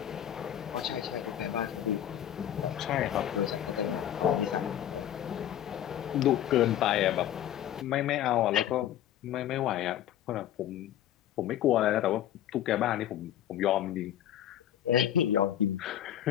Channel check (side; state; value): right; quieter; 11.4 dB